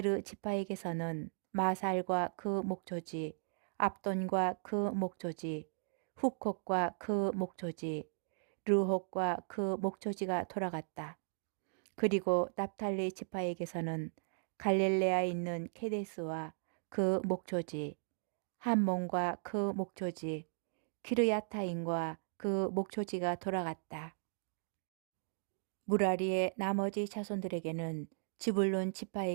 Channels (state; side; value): silent; left; digital silence